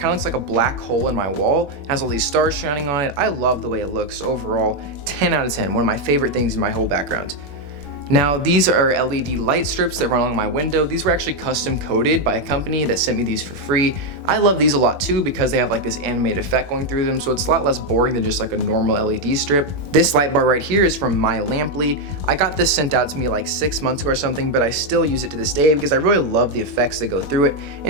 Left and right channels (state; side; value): late; left; 21 ms